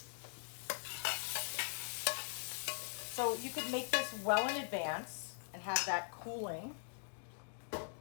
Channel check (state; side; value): silent; right; digital silence